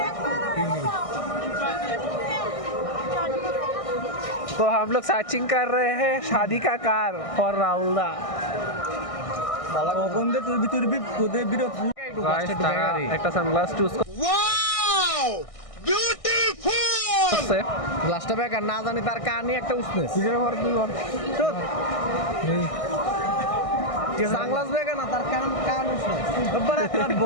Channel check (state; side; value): late; right; 1.6 ms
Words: तो हम लोग सर्चिंग कर रहे हैं शादी का कार फॉर राहुलदा কখন দে তোর ভিতর তোদের বিরোধ একটা সানগ্লাস চুজ গ্লাসটা বেকার না জানি তার কানে একটা উষ্ণেস সানগ্লাস বেকার না তার কান উষ্ণেস